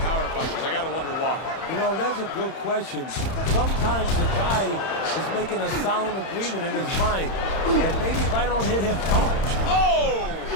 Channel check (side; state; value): right; late; 31 ms